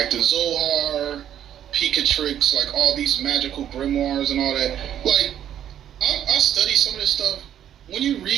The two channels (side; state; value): left; quieter; 10.4 dB